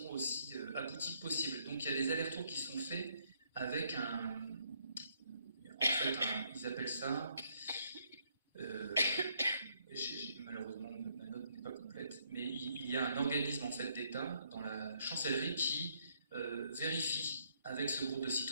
aussi aboutie que possible. Donc il y a des allers-retours qui sont faits avec ils appellent ça, malheureusement ma note n'est pas complète, mais il y a un organisme en fait d'État dans la chancellerie qui vérifie avec ce groupe de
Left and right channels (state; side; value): inverted; both; correlation -0.71